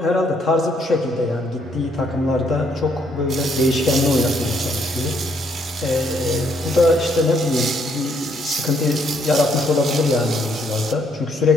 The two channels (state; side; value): normal; both; correlation 0.70